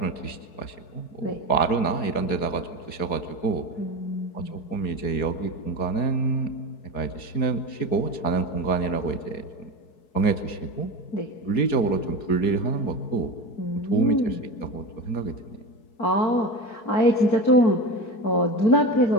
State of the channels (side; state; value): right; late; 4.7 ms